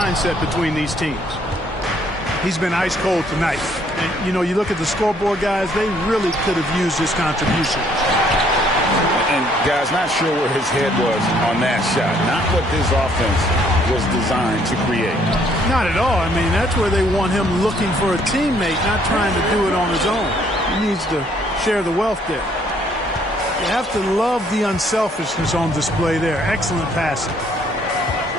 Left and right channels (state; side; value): normal; both; correlation 0.65